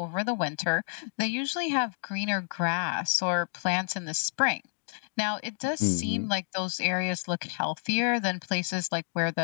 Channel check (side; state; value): right; silent; digital silence